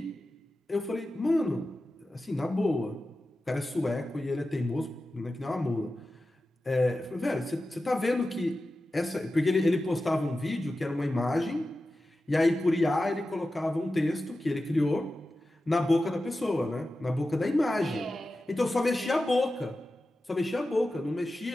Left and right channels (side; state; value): both; normal; correlation 0.93